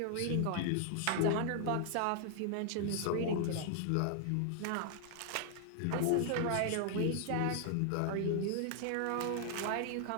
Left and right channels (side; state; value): both; different; correlation -0.01